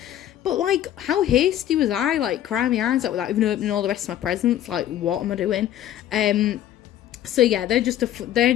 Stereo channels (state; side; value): quieter; right; 11.9 dB